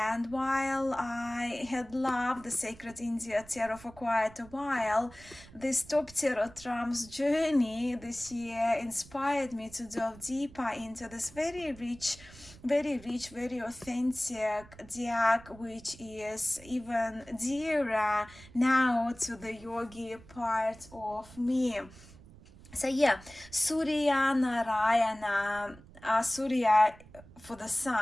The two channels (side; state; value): right; noise; rumble, 21 dB below the sound